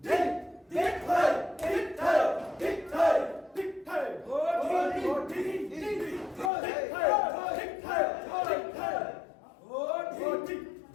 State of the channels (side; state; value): right; drops out; at 6.5 s